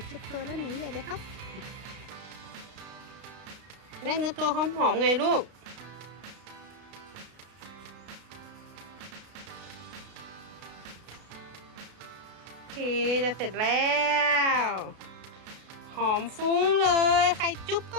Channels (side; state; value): left; late; 33 ms